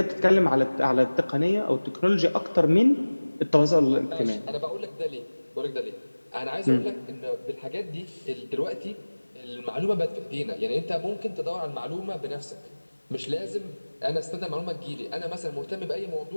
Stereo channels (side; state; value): both; inverted; correlation -1.00